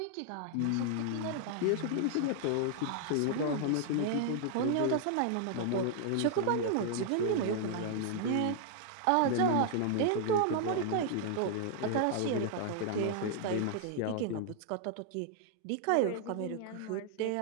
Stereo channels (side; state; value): both; different; correlation 0.00